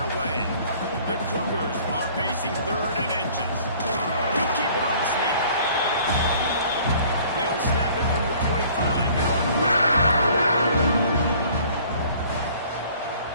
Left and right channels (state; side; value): inverted; both; correlation -0.53